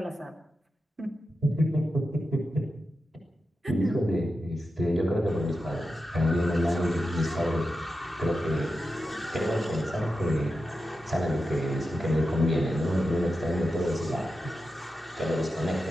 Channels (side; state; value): both; normal; correlation 0.90